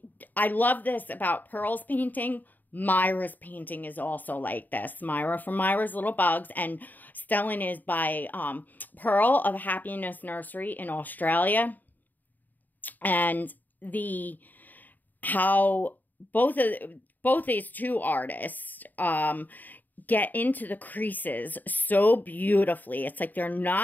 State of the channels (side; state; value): right; late; 0.086 ms